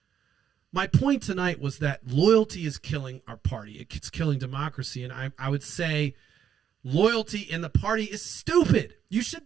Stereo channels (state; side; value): quieter; left; 8.7 dB